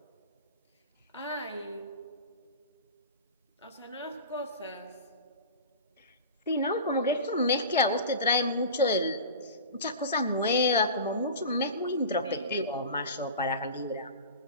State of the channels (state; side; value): inverted; both; correlation -0.32